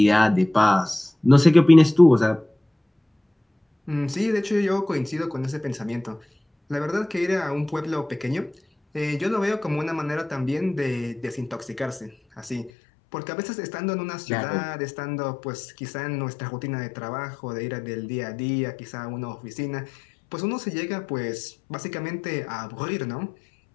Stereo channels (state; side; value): drops out; right; at 12.7 s